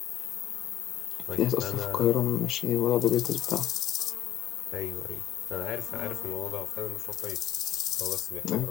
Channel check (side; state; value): right; quieter; 12.7 dB